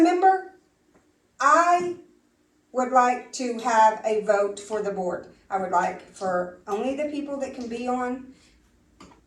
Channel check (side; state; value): both; identical; correlation 1.00